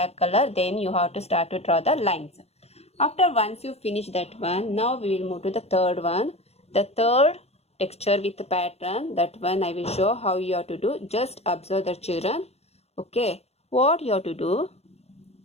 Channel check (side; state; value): right; late; 0.30 ms